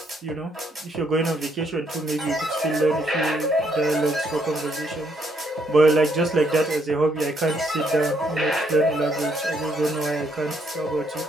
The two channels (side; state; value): both; normal; correlation 0.72